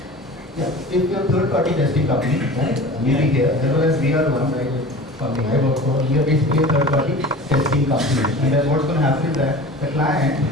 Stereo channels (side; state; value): both; normal; correlation 0.38